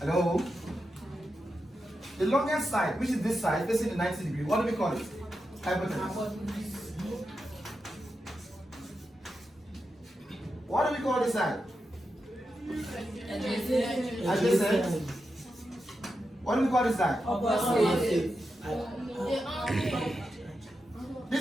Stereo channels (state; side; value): normal; both; correlation 0.88